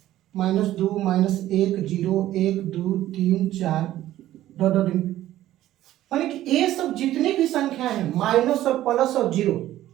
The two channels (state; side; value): quieter; left; 13.9 dB